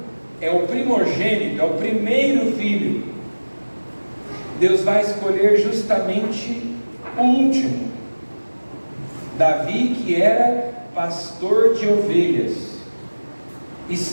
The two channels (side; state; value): both; inverted; correlation -1.00